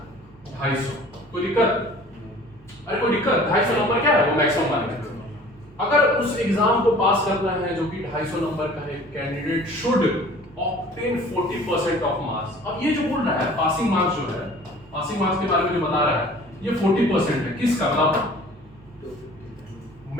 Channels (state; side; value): normal; both; correlation 0.48